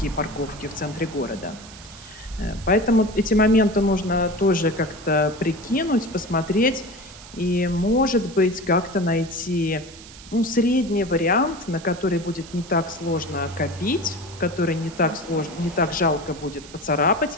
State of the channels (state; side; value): noise; right; hiss, 18 dB below the sound